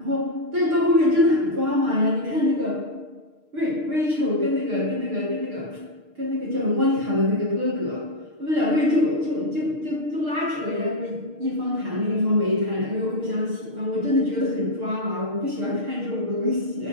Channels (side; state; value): left; late; 6.5 ms